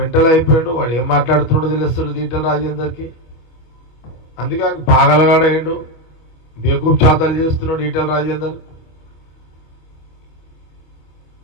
అయిపోయాడు, వాడు ఏం మాట్లాడుతున్నాడో తెలుస్తుంది ఈటెల రాజేందర్కి. అందుకే ఆయన పాగలగాడయ్యాడు, బేకూఫ్ చాతాలు చేస్తున్నాడు ఈటెల రాజేందర్.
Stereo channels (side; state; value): right; late; 25 ms